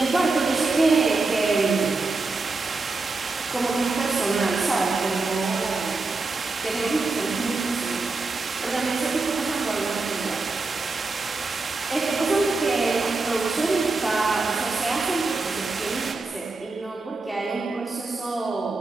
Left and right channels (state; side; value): quieter; left; 3.7 dB